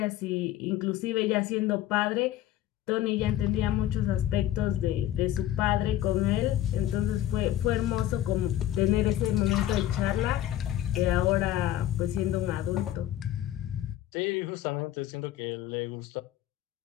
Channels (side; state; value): right; quieter; 12.9 dB